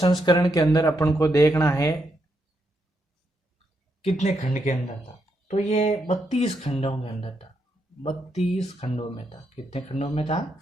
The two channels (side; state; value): both; normal; correlation 0.80